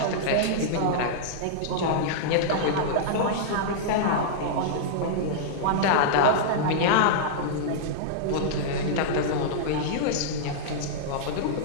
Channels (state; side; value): different; both; correlation -0.02